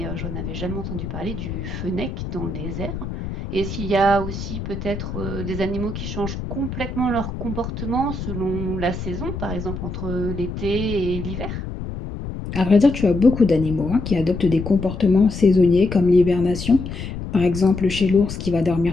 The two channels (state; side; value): noise; left; rumble, 7 dB below the sound